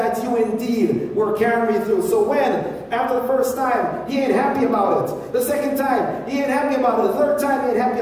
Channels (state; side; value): identical; both; correlation 1.00